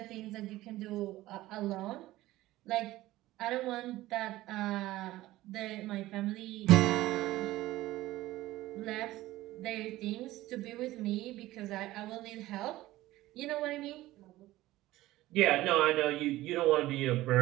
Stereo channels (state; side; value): quieter; left; 16.7 dB